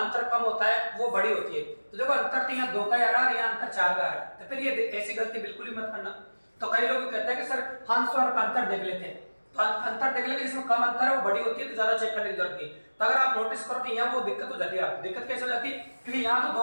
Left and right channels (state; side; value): inverted; both; correlation -1.00